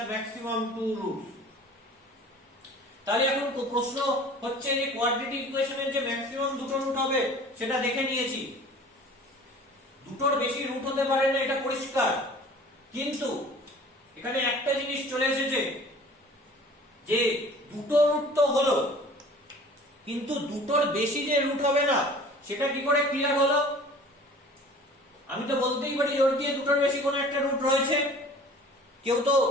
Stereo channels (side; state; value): both; normal; correlation 0.46